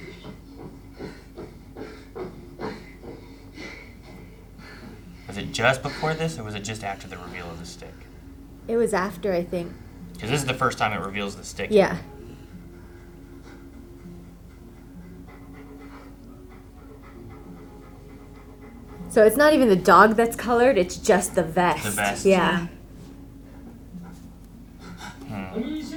Was it just before this, or was it just after the reveal of the stick? It was after, I think. Because this is the first time it reveals the stick. Yeah. So it's not even the dog that's colored, it's just the vest. The vest. Yeah. Hmm.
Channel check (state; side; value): identical; both; correlation 1.00